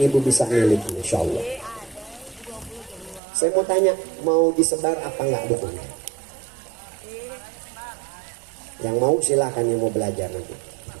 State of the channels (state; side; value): drops out; left; at 3.2 s